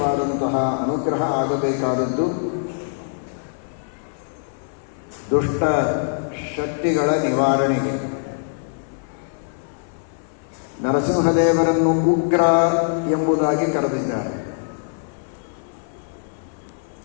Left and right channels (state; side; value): silent; right; 58 dB below the other